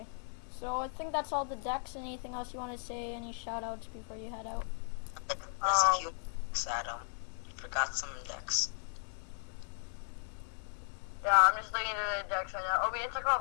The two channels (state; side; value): silent; right; 54 dB below the other